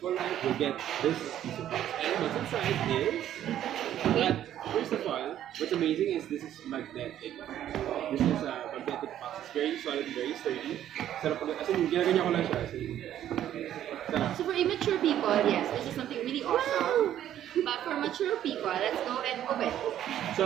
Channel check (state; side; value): quieter; left; 11.4 dB